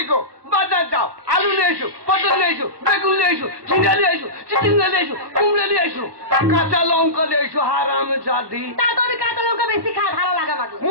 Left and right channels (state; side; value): late; left; 1.2 ms